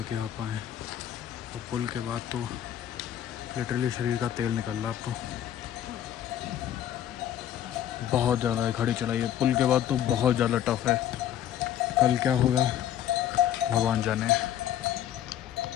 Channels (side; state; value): right; quieter; 11.0 dB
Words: के आ पाए हैं। और पुल के बाद तो लिटरली शरीर का तेल निकल रहा अब तो। बहुत ज़्यादा है खड़ी चढ़ाई है। पुल के बाद तो बहुत ज़्यादा टफ है। कल क्या होगा भगवान जाने।